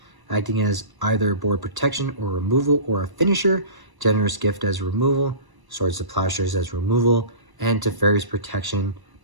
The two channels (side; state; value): left; late; 1.0 ms